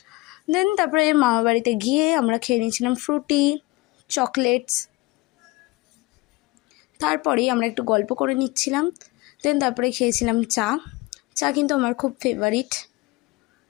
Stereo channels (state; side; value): quieter; right; 22.1 dB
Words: দেন তারপরে মামা বাড়িতে গিয়ে আমরা খেয়ে নিয়েছিলাম ফ্রুটি, চকলেটস। তারপরেই আমরা একটু গল্প করে নিচ্ছিলাম। দেন তারপরে খেয়েছিলাম চা। চা কিন্তু আমার খুব ফেভারিট।